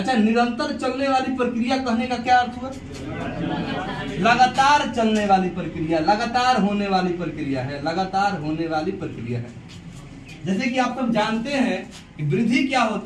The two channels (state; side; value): identical; both; correlation 1.00